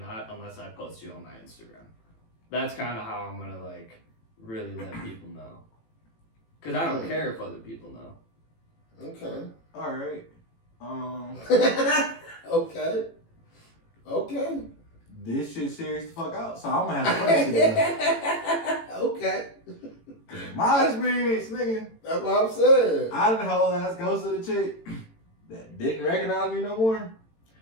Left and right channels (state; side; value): late; right; 18 ms